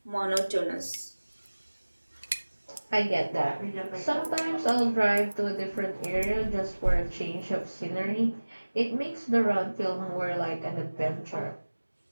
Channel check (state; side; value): inverted; both; correlation -1.00